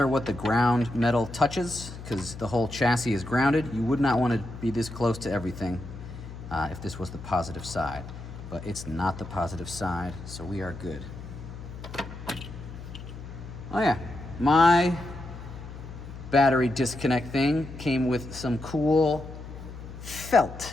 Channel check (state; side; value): noise; left; hum, 12 dB below the sound